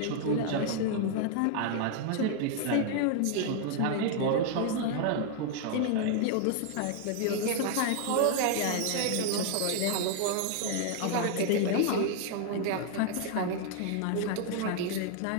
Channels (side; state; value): both; different; correlation 0.00